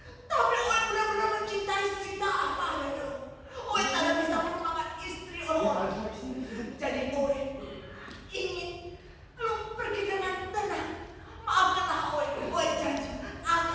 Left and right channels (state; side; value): identical; both; correlation 1.00